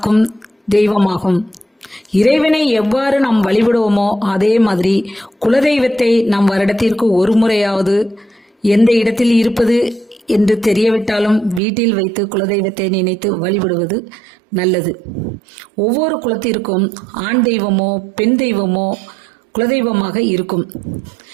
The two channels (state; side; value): drops out; left; at 11.6 s